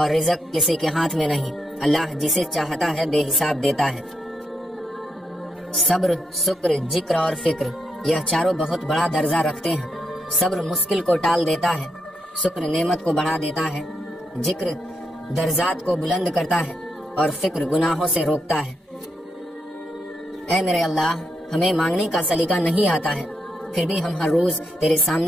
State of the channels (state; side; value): normal; both; correlation 0.81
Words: رزق کسی کے ہاتھ میں نہیں، اللہ جسے چاہتا ہے بے حساب دیتا ہے۔ صبر، شکر، ذکر اور فکر، یہ چاروں بہت بڑا درجہ رکھتے ہیں۔ صبر مشکل کو ٹال دیتا ہے، شکر نعمت کو بڑھا دیتا ہے، ذکر درجات کو بلند کرتا ہے، اور فکر گناہوں سے روکتا ہے۔ اے میرے اللہ، ہمیں مانگنے کا سلیقہ نہیں آتا ہے، پھر بھی ہم ہر روز تیرے